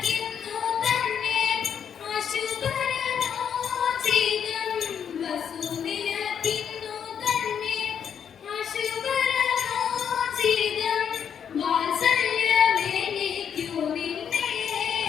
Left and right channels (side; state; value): right; quieter; 8.0 dB